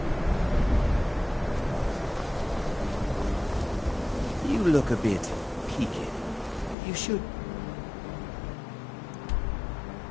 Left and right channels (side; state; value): right; drops out; at 6.8 s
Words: You look a bit peaked. You should...